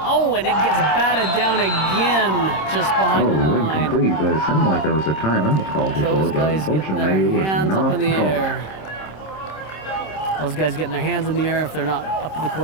and it gets batted down again just behind the line. Incomplete, but it sounded like there was a timeout called before, Those but guys getting unfortunately it their was hands up not in the called. air. Those guys getting their hands in the air if they're not up to the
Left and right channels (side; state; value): right; late; 26 ms